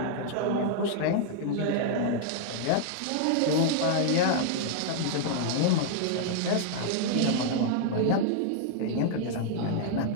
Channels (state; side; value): different; both; correlation -0.01